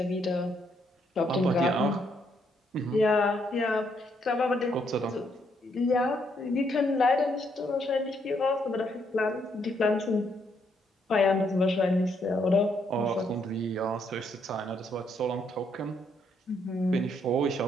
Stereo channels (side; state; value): both; normal; correlation 0.73